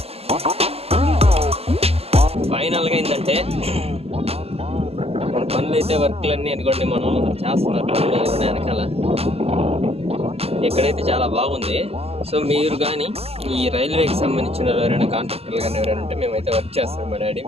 ఫైనల్గా ఏంటంటే మన పనులు అయితే వర్క్లన్నీ అనుకోండి మనం చేస్తున్నారు పనులు వెనకాల. ఎక్కడైతే చాలా బాగుంది. సో మీరు కానీ ఈ రైల్వేకి సంబంధించిన ఎవరైనా కాంట్రాక్టర్లు కానీ ఎవరైనా ఉంటే మేమైతే వర్క్ చేస్తాం. మా డాడీ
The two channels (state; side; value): late; left; 0.29 ms